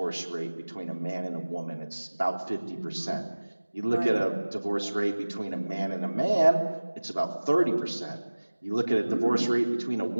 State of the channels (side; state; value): both; inverted; correlation -1.00